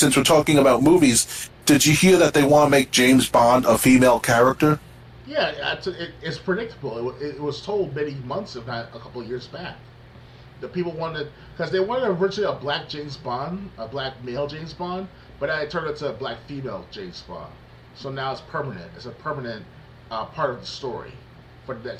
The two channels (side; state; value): both; identical; correlation 1.00